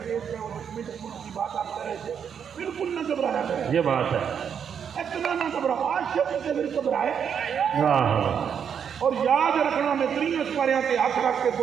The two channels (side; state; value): left; quieter; 7.7 dB